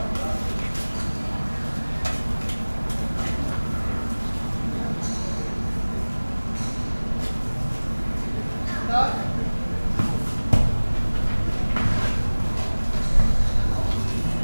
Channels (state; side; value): inverted; both; correlation -1.00